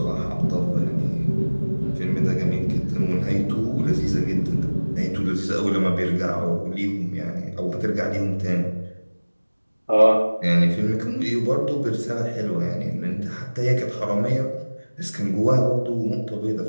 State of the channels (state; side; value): inverted; both; correlation -1.00